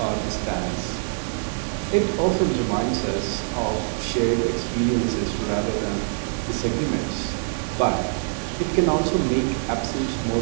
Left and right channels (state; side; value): silent; left; 60 dB below the other